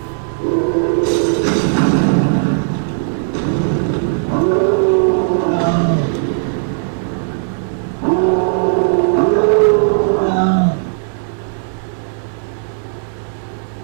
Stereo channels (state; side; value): silent; left; digital silence